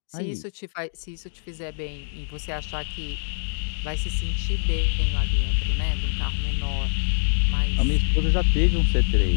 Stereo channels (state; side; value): silent; right; digital silence